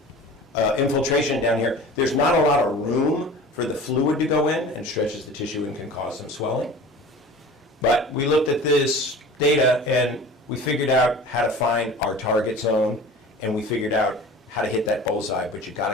infiltration down here, there's not a lot of room for the fluid to go in and stretches the tissue and can cause some swelling. But we looked at this data and we figured out how to find our target zone, and we figured out how to hit that bullseye, but you got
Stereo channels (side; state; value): both; normal; correlation 0.40